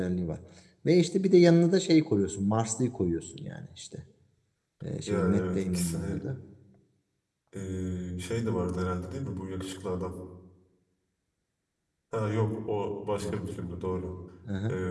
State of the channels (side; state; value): both; identical; correlation 1.00